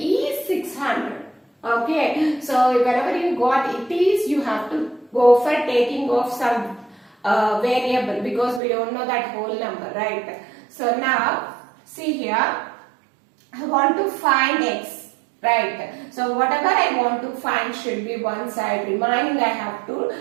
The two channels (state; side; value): drops out; left; at 8.6 s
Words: 600. Okay. So whenever you got it is, you have to go for taking off some variable because we don't know that whole number, right? So now see here, I want to find x, right? So whatever I want to find should be one side, remaining I have to